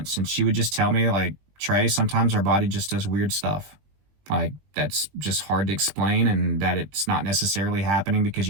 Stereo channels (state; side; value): late; left; 20 ms